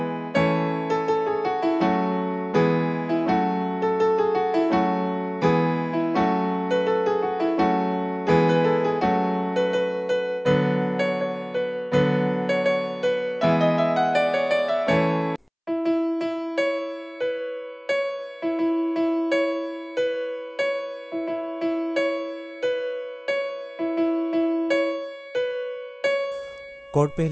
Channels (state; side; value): identical; both; correlation 1.00